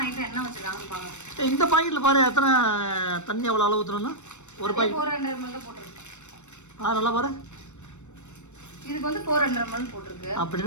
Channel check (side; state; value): right; late; 0.83 ms